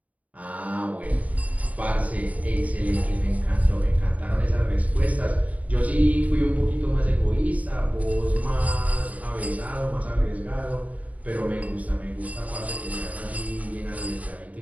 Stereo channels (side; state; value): left; late; 0.071 ms